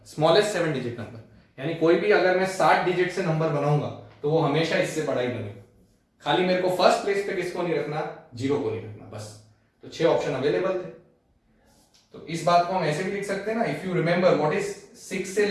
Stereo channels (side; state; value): both; identical; correlation 1.00